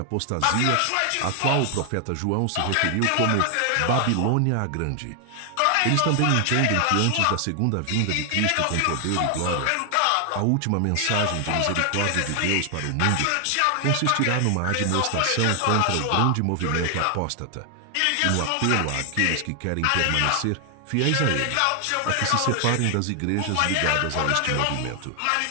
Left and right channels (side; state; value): both; different; correlation 0.00